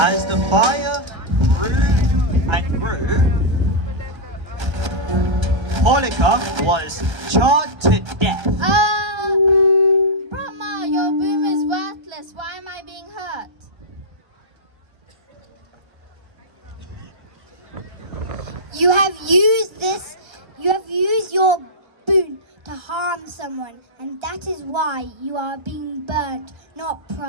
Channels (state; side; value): late; left; 1.3 ms